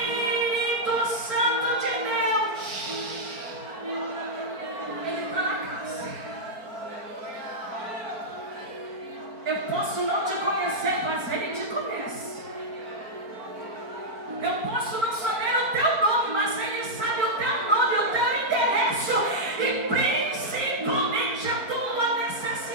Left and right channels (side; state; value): left; late; 4.5 ms